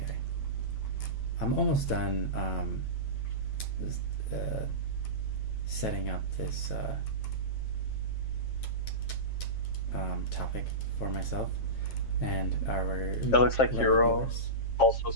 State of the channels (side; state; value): right; late; 7.5 ms